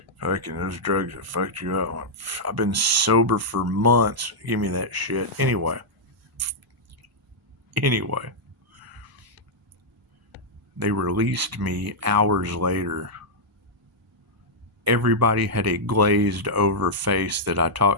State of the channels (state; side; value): normal; both; correlation -0.07